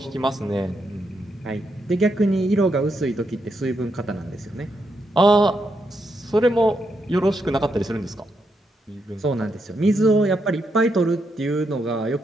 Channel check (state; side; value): normal; both; correlation 0.81